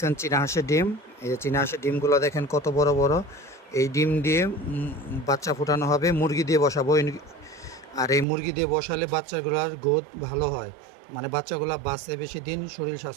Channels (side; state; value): left; drops out; at 8.2 s